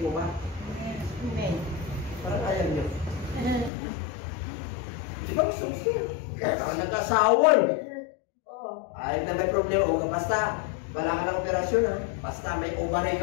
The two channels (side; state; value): right; drops out; at 3.7 s